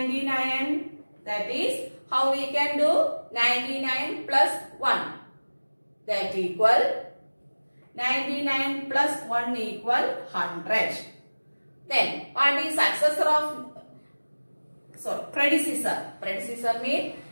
That is how we can do 99 plus 1. That equal 99 plus 1 equal 100. Then what is successor of predecessor? Predecessor means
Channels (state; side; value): inverted; both; correlation -1.00